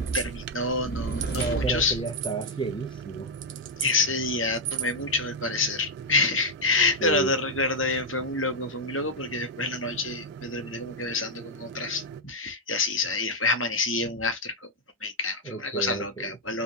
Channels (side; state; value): both; normal; correlation 0.00